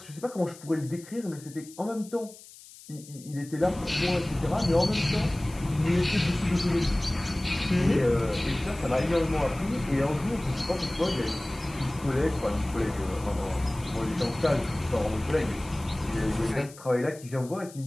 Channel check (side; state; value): left; noise; hiss, 19 dB below the sound